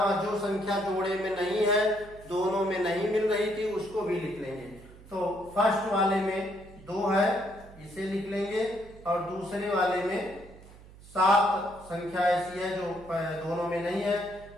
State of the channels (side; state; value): right; noise; hum, 20 dB below the sound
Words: जो संख्या जोड़े में नहीं है, दोनों में नहीं मिल रही थी, उसको भी लिख लेंगे। तो फर्स्ट वाले में 2 है, इसे लिख लेंगे और दूसरे वाले में 7 संख्या ऐसी है जो दोनों में नहीं है